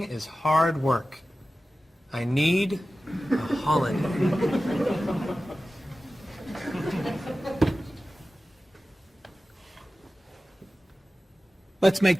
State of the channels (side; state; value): both; normal; correlation 0.95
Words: is hard work. I need a holiday. Let's make